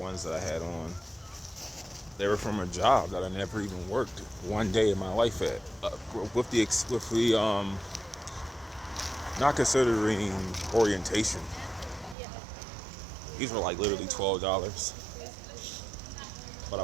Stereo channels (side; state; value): left; drops out; at 12.2 s